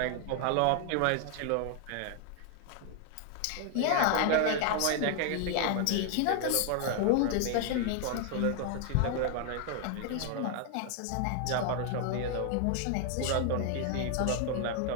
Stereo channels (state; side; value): different; both; correlation 0.00